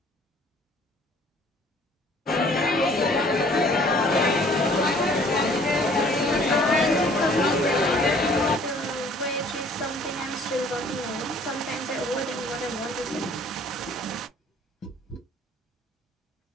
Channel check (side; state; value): both; normal; correlation 0.56